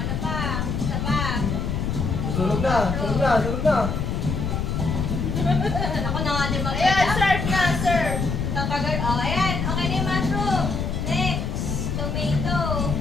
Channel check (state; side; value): noise; left; rumble, 1 dB below the sound